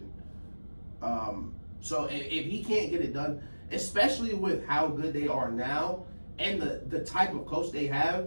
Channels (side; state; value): both; inverted; correlation -1.00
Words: So if he can't get it done, especially with how good they are now and the type of coach they